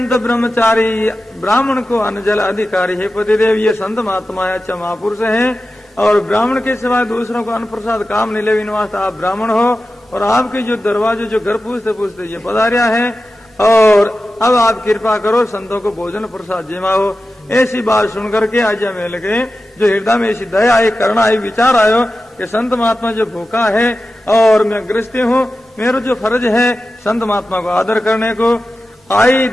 ब्रह्मचारी ब्राह्मण को अनजल अधिकारी। हे पतिदेव ये संत महात्मा है, अच्छा महापुरुष है और ब्राह्मण के सिवाय दूसरों को अन्न प्रसाद काम नहीं ले वास्ते आप ब्राह्मण हो और आपके जो दरवाजे जो घर पूछते पूछते ये पधारिया है और अब आप कृपा करो संतों को भोजन प्रसाद जिमाओ। ऐसी बात सुनकर के अजय मेल के जो हृदय में ऐसी दया आई करुणा आई विचार आयो कि संत महात्मा जो भूखा है और मैं गृहस्थी हूँ, मेरा जो फर्ज है संत महात्मा को आदर करने को, आई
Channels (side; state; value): both; normal; correlation 0.93